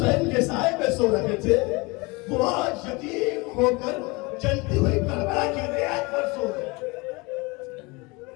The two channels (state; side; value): quieter; right; 25.9 dB